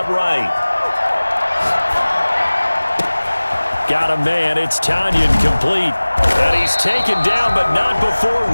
right. Got a man. It's Tonyan complete. And he's taken down, but not before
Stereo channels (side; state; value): both; inverted; correlation -1.00